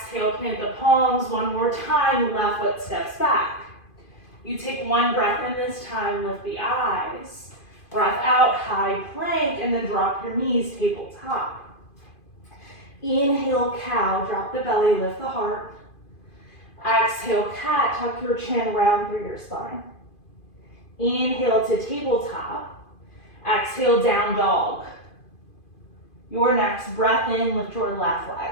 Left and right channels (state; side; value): late; right; 2.5 ms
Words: plant the palms one more time, left foot steps back. You take one breath in this time, lift the eyes. Breath out, high plank, and then drop your knees, tabletop. Inhale, cow, drop the belly, lift the heart. Exhale, cat, tuck your chin round through your spine. Inhale to tabletop. Exhale, down dog. Your next breath in, lift your left